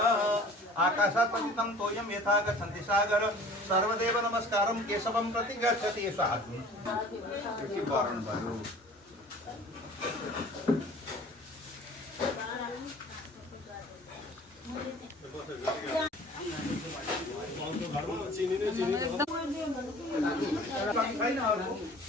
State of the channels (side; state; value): both; normal; correlation 0.47